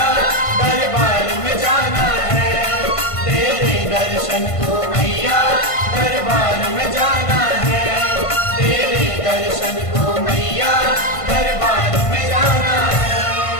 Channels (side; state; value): right; late; 1.5 ms